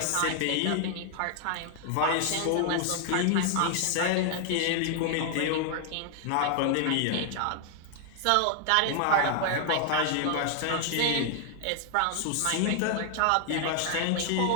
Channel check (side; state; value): both; different; correlation 0.00